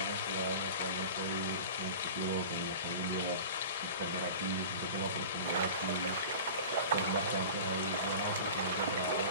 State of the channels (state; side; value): inverted; both; correlation -0.36